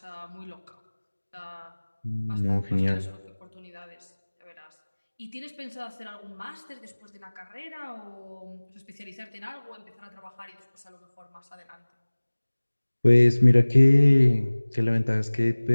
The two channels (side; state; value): both; inverted; correlation -1.00